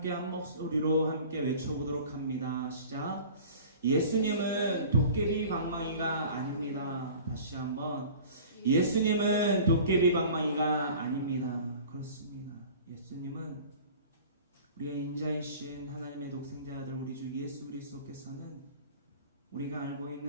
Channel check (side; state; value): both; inverted; correlation -0.43